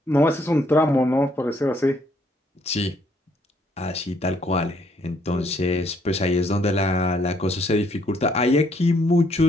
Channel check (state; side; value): normal; both; correlation 0.68